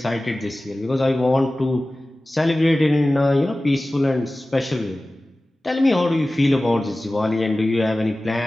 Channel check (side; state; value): both; normal; correlation 0.97